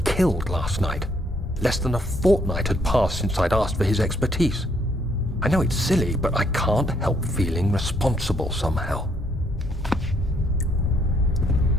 last night. Less than a fortnight had passed since I'd asked for his expertise. I know it's silly, but I can't help feeling responsible somehow.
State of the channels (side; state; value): both; normal; correlation 0.70